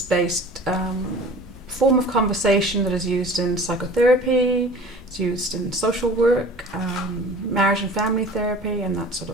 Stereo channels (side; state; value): both; normal; correlation 0.43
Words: form of conversation that is used in psychotherapy, it's used in social work, marriage and family therapy, and that sort